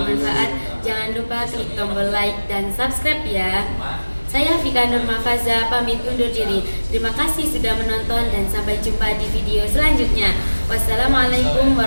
jangan lupa klik tombol like dan subscribe ya. Saya Vika Nurmafaza pamit undur diri. Terima kasih sudah menonton dan sampai jumpa di video selanjutnya. Wassalamualaikum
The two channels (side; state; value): both; inverted; correlation -1.00